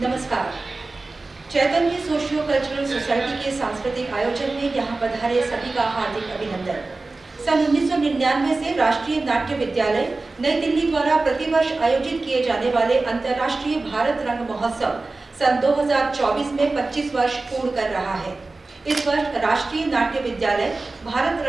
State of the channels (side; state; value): left; quieter; 3.4 dB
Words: चैतन्य socio cultural society के सांस्कृतिक आयोजन में यहाँ पधारे सभी का हार्दिक अभिनंदन। सन 1999 से राष्ट्रीय नाट्य विद्यालय नई दिल्ली द्वारा प्रतिवर्ष आयोजित किए जाने वाले अंतर्राष्ट्रीय भारत रंग महोत्सव सन 2024 में 25 वर्ष पूर्ण कर रहा है। इस वर्ष राष्ट्रीय नाट्य विद्यालय भारत